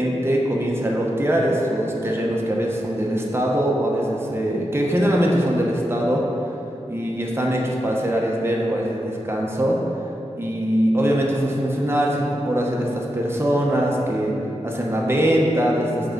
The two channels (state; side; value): normal; both; correlation 0.86